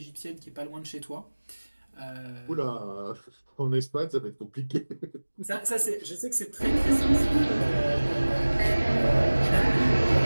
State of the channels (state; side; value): inverted; both; correlation -1.00